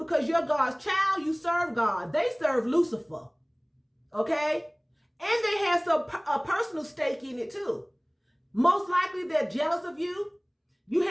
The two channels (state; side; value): identical; both; correlation 1.00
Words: you're God's child. You serve God. They serve Lucifer. Okay? And they have a personal stake in it too. Most likely they're jealous of you. You